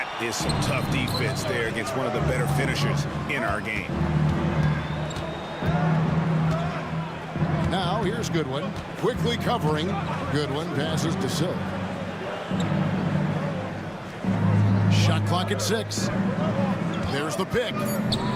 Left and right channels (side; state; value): both; identical; correlation 1.00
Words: is some tough defense there against one of the better finishers in our game. Now, here's Goodwin. Quickly covering. Goodwin passes to Silk. Shot clock at 6. There's the pick.